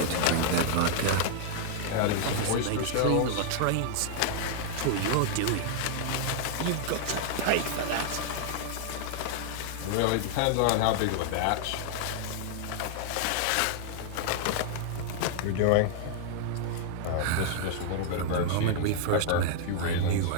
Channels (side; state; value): both; different; correlation -0.01